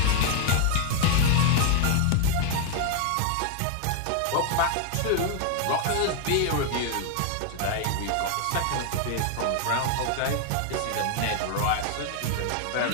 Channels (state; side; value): different; both; correlation 0.00